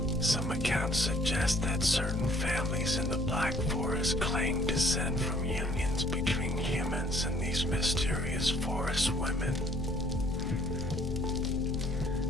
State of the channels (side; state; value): both; normal; correlation 0.60